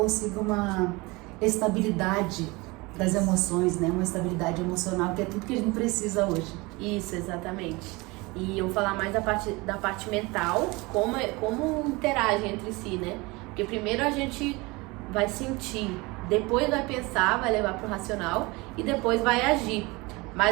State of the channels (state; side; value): quieter; left; 24.2 dB